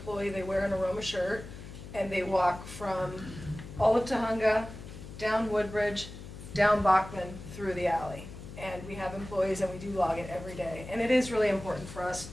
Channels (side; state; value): left; noise; hum, 13 dB below the sound